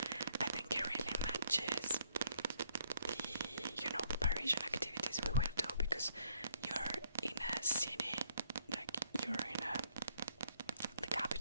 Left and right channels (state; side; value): inverted; both; correlation -0.69